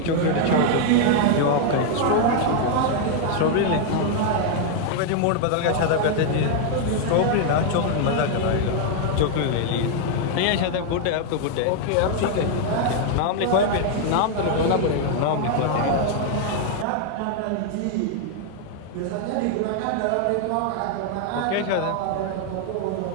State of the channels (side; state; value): both; different; correlation 0.00